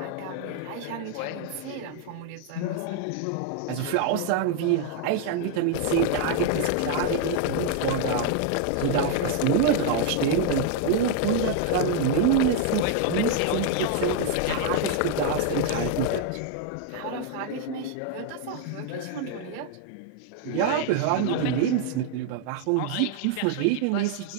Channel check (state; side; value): different; both; correlation 0.00